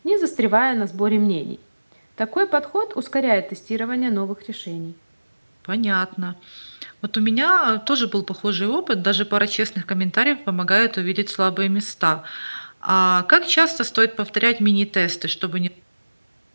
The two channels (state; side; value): inverted; both; correlation -1.00